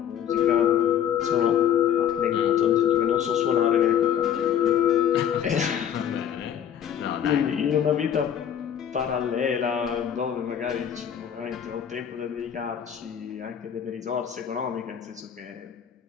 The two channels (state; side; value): quieter; right; 9.3 dB